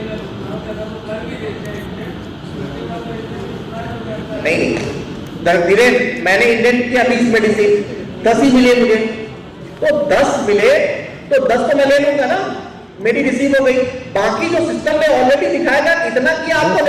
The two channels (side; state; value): both; identical; correlation 1.00